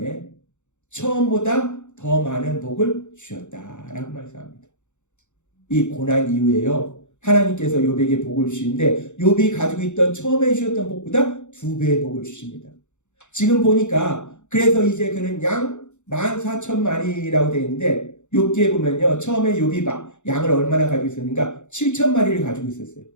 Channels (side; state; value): right; late; 0.84 ms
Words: 처음보다 더 많은 복을 주셨다라고 말씀합니다. 이 고난 이후에요, 하나님께서 욥에게 복을 주시는데 욥이 가지고 있던 처음에 주셨던 복보다 2배의 복을 주십니다. 지금 보니까 그래서 이제 그는 양 14,000마리라고 되어 있는데, 욥기에 보면요 처음에 욥이 양을 얼마나 가지고 있었는가? 7,000마리를 가지고 있었어요.